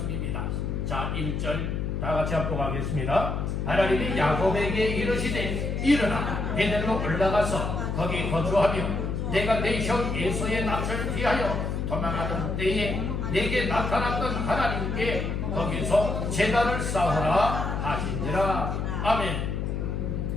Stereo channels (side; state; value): left; noise; hum, 2 dB below the sound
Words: 자, 1절 다 같이 합독하겠습니다. 하나님이 야곱에게 이르시되 일어나 베델로 올라가서 거기 거주하며 내가 내 형 에서의 납치를 피하여 도망하던 때에 내게 나타났던 하나님께 거기서 제단을 쌓으라 하시니라. 아멘.